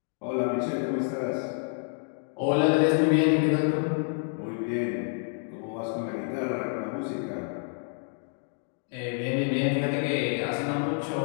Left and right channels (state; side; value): silent; right; 58 dB below the other